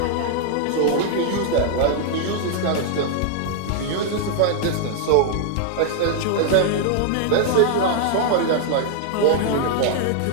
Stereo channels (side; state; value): both; different; correlation 0.00